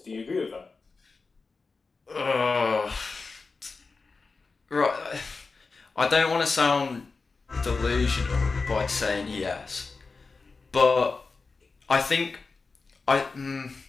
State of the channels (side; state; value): right; quieter; 4.2 dB